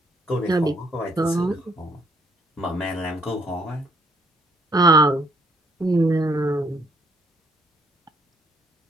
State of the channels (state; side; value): normal; both; correlation 0.69